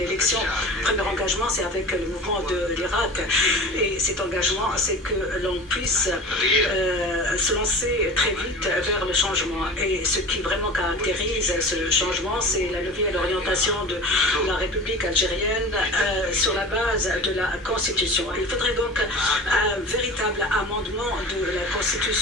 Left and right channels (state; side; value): normal; both; correlation 0.36